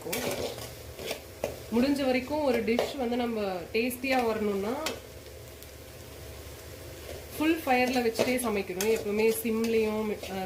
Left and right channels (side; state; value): both; identical; correlation 1.00